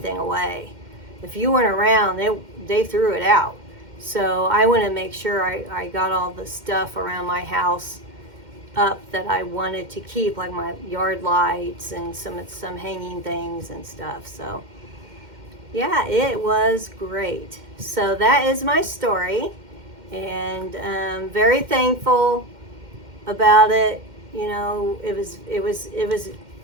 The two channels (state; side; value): late; left; 2.1 ms